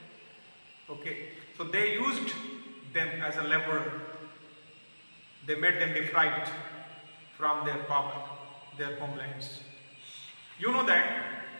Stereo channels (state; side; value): inverted; both; correlation -1.00